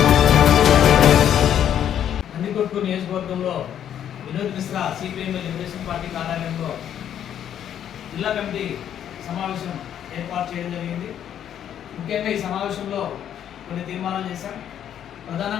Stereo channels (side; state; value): right; quieter; 9.9 dB